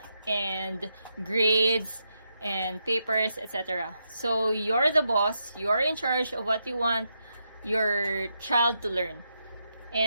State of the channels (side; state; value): both; inverted; correlation -0.83